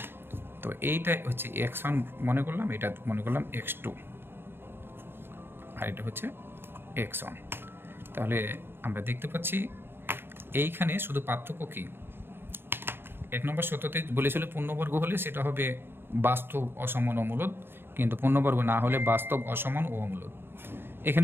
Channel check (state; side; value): late; left; 0.11 ms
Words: তো এইটা হচ্ছে x1 মনে করলাম, এটা মনে করলাম x2, আর এটা হচ্ছে x1। তাহলে আমরা দেখতে পাচ্ছি এইখানে শুধু পার্থক্য কি, 1 নম্বর সত্যতে বলেছিল পূর্ণবর্গ হলে সেটা হবে বাস্তব, অসমান, অমূলদ, কিন্তু পূর্ণবর্গ না হলে বাস্তব, অসমান ও অমূলদ।